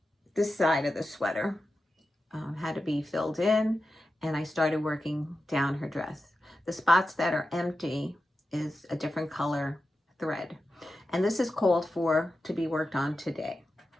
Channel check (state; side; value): normal; both; correlation 0.91